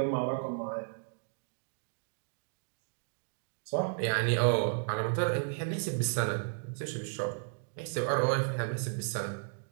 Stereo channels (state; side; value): silent; left; digital silence